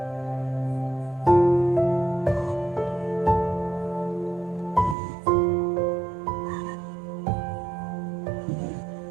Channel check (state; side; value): drops out; left; at 5.0 s